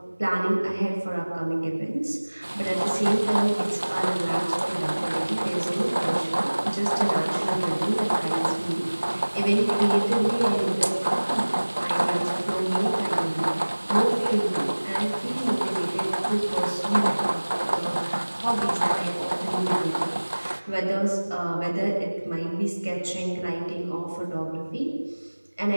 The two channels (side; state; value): both; inverted; correlation -1.00